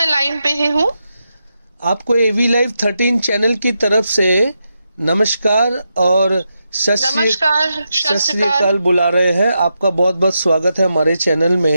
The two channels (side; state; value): both; inverted; correlation -0.86